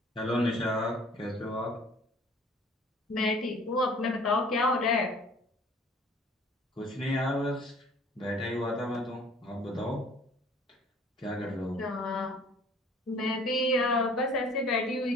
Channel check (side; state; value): both; normal; correlation 0.52